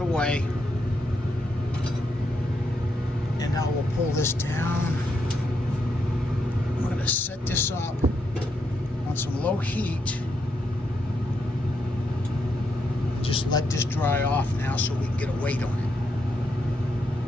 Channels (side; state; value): both; normal; correlation 0.80